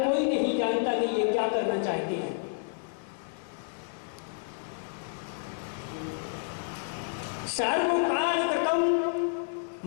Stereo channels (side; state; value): right; silent; digital silence